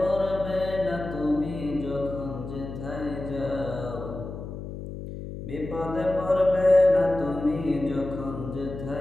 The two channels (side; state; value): left; noise; hum, 9 dB below the sound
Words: না তুমি যখন যেথায় যাও। বিপদে পড়বে না তুমি যখন